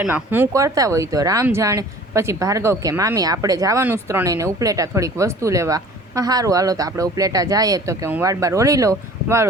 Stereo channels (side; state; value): both; normal; correlation 0.47